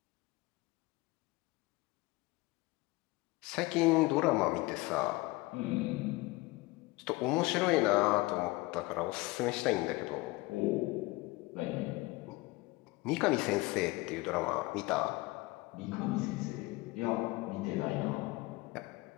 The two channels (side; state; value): right; quieter; 22.1 dB